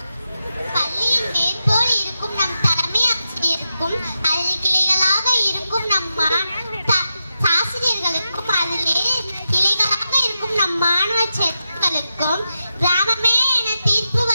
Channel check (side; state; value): both; inverted; correlation -0.89